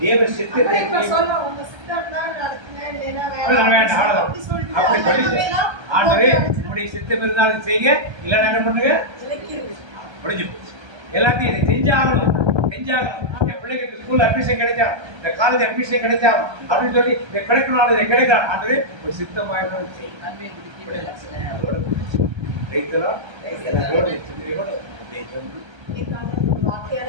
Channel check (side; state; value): left; late; 1.3 ms